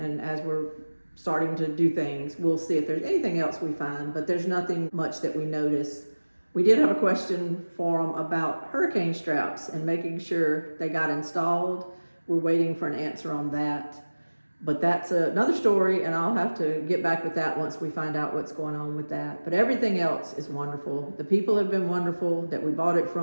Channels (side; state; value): both; inverted; correlation -1.00